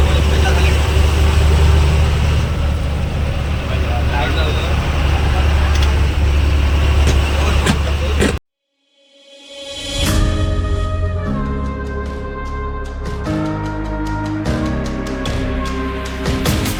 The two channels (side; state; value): both; identical; correlation 1.00